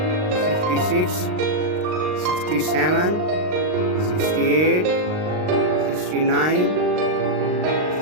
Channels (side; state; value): left; late; 39 ms